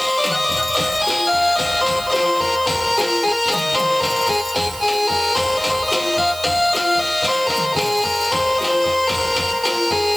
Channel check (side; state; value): right; noise; hiss, 14 dB below the sound